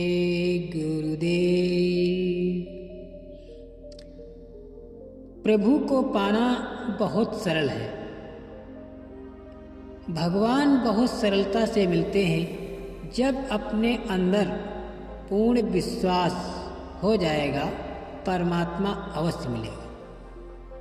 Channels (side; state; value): both; identical; correlation 1.00